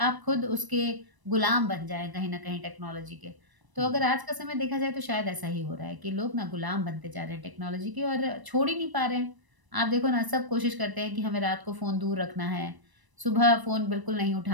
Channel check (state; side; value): late; left; 1.0 ms